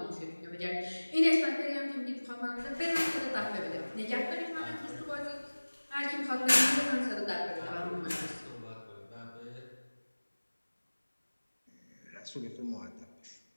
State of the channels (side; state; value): both; inverted; correlation -1.00